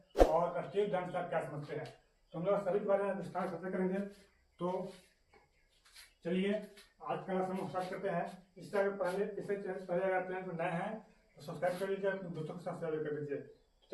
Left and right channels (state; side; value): identical; both; correlation 1.00